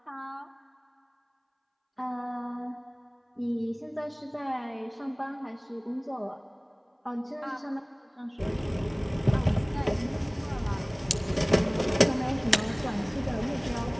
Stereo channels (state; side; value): identical; both; correlation 1.00